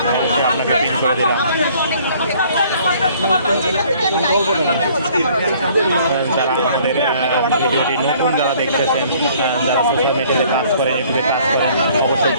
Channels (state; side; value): inverted; both; correlation -0.57